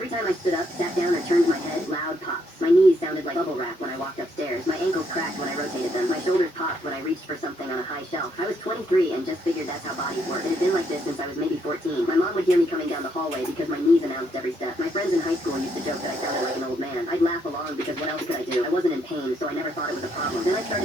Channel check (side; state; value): both; normal; correlation 0.74